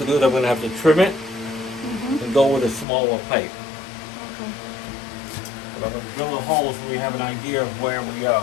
do is I'm gonna have to trim it and go with a smaller pipe. Okay. But I'm gonna drill the holes so we have an idea of where we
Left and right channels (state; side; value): drops out; right; at 2.9 s